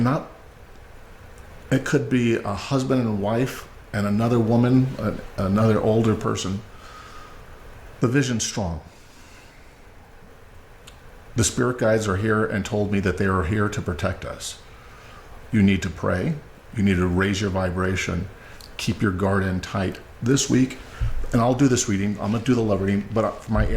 It could be a husband and wife and another woman, another older person. The vision's strong. The spirit guides are here and told me that they are here to protect us. You need to pray. You need to raise your vibration. Keep your guard in tight this week. And I'll do this reading. I'm going to do the love reading. But for my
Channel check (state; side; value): identical; both; correlation 1.00